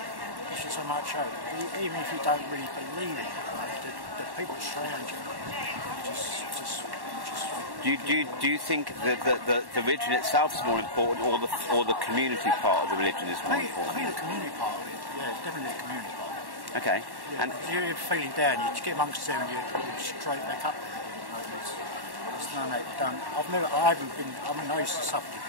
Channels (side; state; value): left; late; 1.1 ms